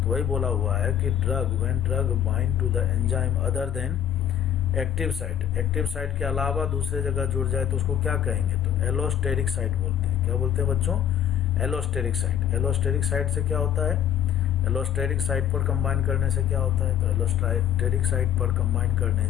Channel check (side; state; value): right; quieter; 9.6 dB